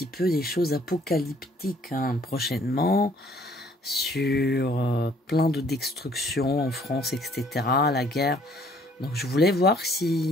peu des choses apocalyptiques prochainement, sur plein de destructions en France, etc., la guerre. Donc je voulais voir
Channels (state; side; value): normal; both; correlation 0.60